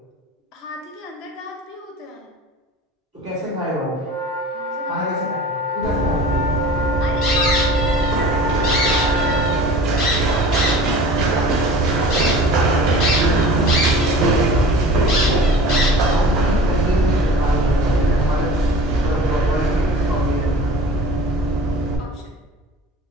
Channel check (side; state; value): both; normal; correlation 0.41